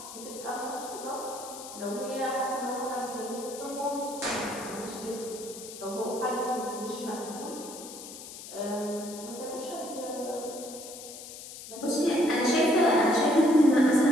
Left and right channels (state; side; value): noise; left; hiss, 13 dB below the sound